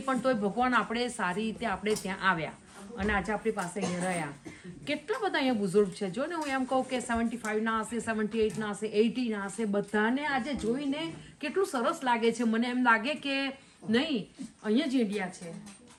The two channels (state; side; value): identical; both; correlation 1.00